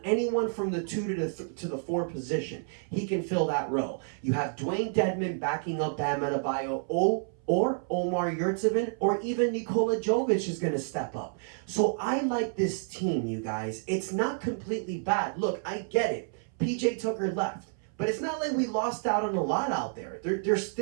from the 2 to the 4 position. He can fill that role. You have Dwayne Dedmon backing up Bam Adebayo, or Omar Yurtseven, or even Nikola Jovic is going to step up. So I like this team, you guys. It's not completely bad. Look, I get it. PJ Tucker left. But it's not like we lost out on a lot out there. There's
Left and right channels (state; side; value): silent; left; 58 dB below the other